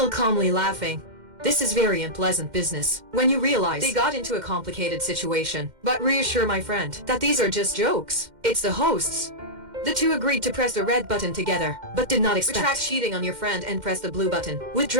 calmly laughing. This is very unpleasant business when you realize they got into a complicated situation. But reassure my friend that these are just jokes. It's the hosts. The 2 agreed to press the red button together, but did not expect retract cheating on your friend and press the blue button.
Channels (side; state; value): left; late; 2.1 ms